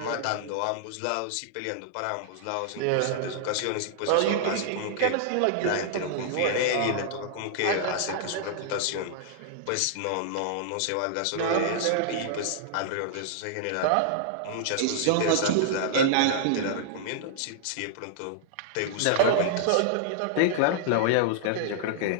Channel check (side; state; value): both; different; correlation -0.01